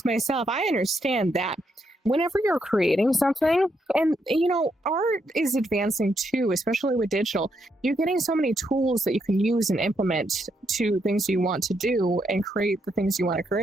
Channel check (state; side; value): normal; both; correlation 0.78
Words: myself, I understand that whenever you're creating something, and art is advancing too, especially with digital, you're getting so many tools that you can use and implement to things you want to do and create the things you want to